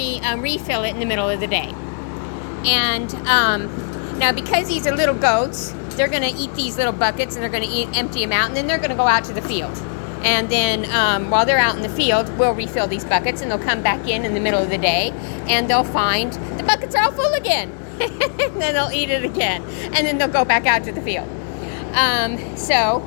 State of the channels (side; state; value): right; silent; digital silence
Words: refill it in the middle of the day. And now because these are little goats, they're going to eat these little buckets and they're going to empty them out, and then they're going to go out to the field. And then while they're out in the field, we'll refill these buckets, and they'll come back in the middle of the day, and they'll find the buckets are all full again. And then they'll eat it again, and then they'll go back out to the field. So